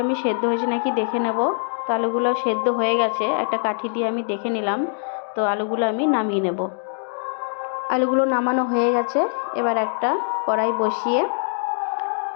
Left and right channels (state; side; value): silent; right; 64 dB below the other